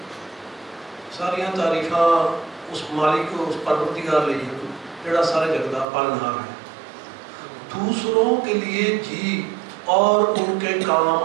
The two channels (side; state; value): left; drops out; at 5.9 s